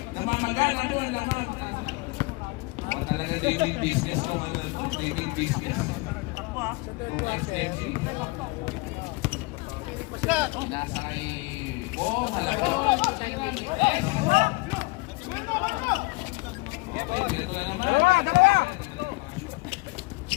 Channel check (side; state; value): right; quieter; 24.5 dB